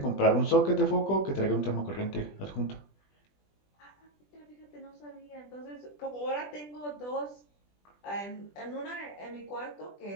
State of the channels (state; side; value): late; right; 20 ms